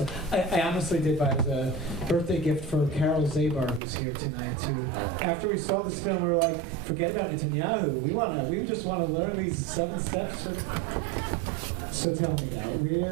I honestly did buy it as a birthday gift for Carole Zabar, who's here tonight too. After we saw this film, we were like, forget about Netanyahu. We just want to learn these 7 steps. So tell me now,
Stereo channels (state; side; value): drops out; left; at 3.8 s